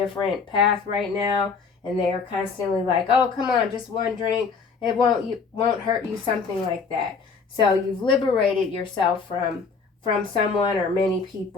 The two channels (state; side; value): quieter; right; 5.1 dB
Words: path right now. And they are constantly like, oh, come on, just one drink. It won't hurt you, something like that. So you've liberated yourself from someone or many